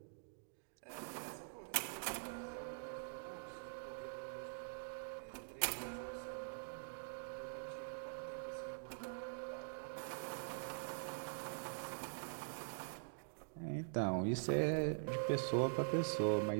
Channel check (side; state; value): left; silent; digital silence